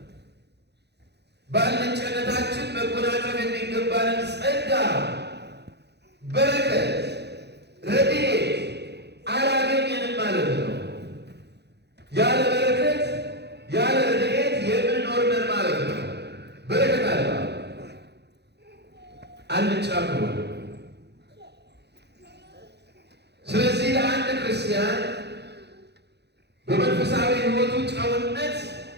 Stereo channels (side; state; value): left; late; 0.49 ms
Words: በአልጫነታችን መጎናጸፍ የሚገባንን ጸጋ፣ በረከት፣ ረድኤት አላገኘንም ማለት ነው። ያለ በረከት ያለ ረድኤት የምንኖር ነን ማለት ነው። በረከት አለ አልጫ ከሆነ። ስለዚህ ለአንድ ክርስቲያን በመንፈሳዊ ሕይወቱ ጨውነት